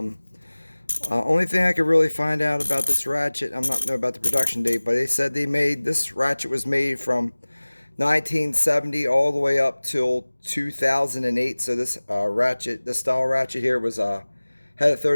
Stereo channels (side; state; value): both; inverted; correlation -1.00